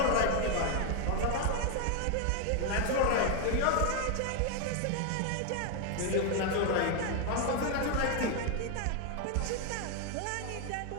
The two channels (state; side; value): different; both; correlation 0.01